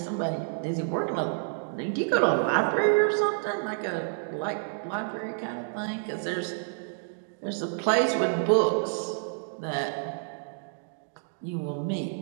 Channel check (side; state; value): left; silent; digital silence